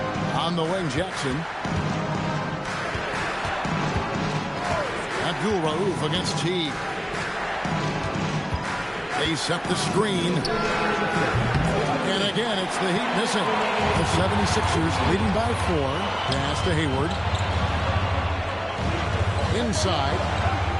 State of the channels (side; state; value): both; identical; correlation 1.00